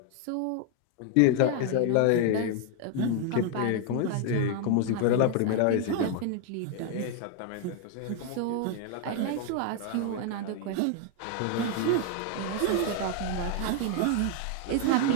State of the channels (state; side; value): different; both; correlation 0.00